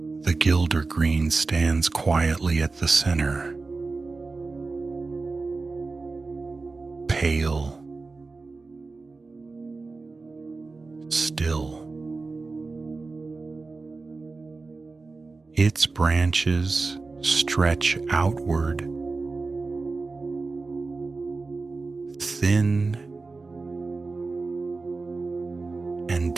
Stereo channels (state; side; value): quieter; left; 3.8 dB